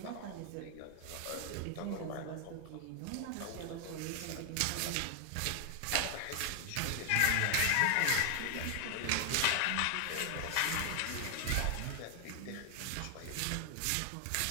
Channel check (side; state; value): both; different; correlation 0.00